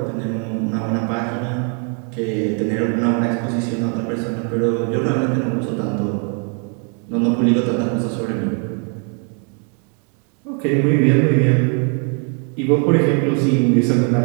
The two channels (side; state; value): left; quieter; 40.0 dB